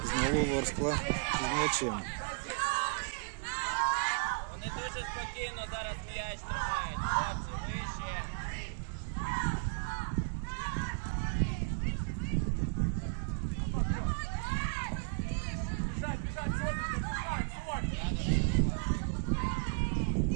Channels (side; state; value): left; quieter; 35.7 dB